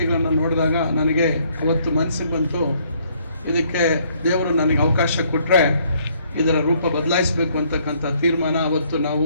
ನೋಡಿದಾಗ ನನಗೆ ಅವತ್ತು ಮನಸ್ಸಿಗೆ ಬಂತು, ಇದಕ್ಕೆ ದೇವರು ನನಗೆ ಅವಕಾಶ ಕೊಟ್ಟರೆ ಇದರ ರೂಪ ಬದಲಾಯಿಸಬೇಕು ಅಂತಕ್ಕಂಥ ತೀರ್ಮಾನ ಅವತ್ತು ನಾವು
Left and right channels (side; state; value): both; inverted; correlation -0.66